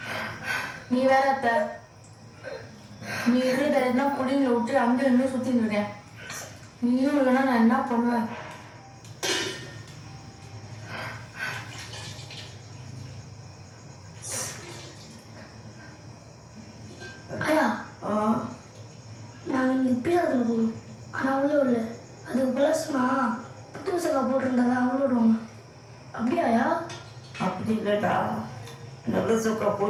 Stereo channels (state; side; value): identical; both; correlation 1.00